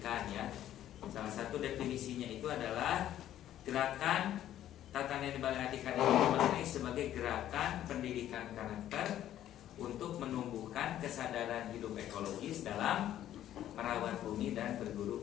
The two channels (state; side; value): quieter; right; 12.0 dB